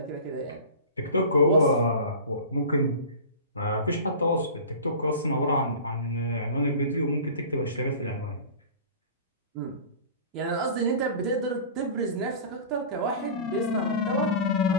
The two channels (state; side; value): inverted; both; correlation -0.37